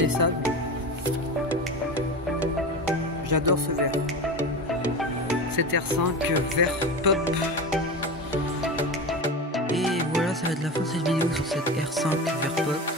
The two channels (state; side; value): normal; both; correlation 0.26